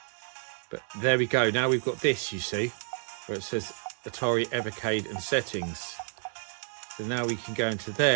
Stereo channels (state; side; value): silent; left; 58 dB below the other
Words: but there we go. Now we've got this, you see, where it says Atari Evercade and settings. So now we can go into